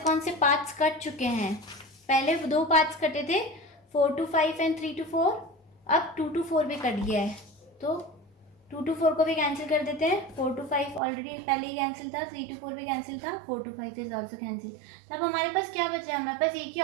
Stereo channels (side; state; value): left; drops out; at 11.0 s